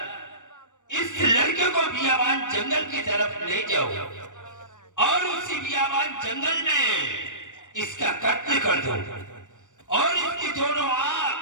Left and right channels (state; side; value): late; right; 0.86 ms